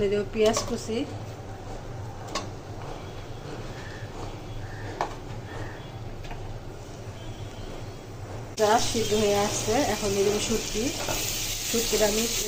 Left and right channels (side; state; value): both; identical; correlation 1.00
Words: দেবো পেঁয়াজ কুচি, সিদ্ধ হয়ে আসছে। এখন দিয়ে দেবো শুটকিটা আমি